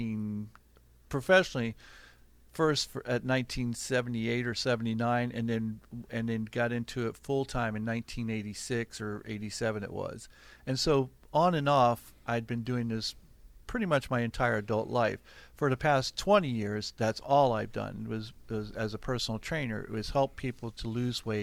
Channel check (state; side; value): identical; both; correlation 1.00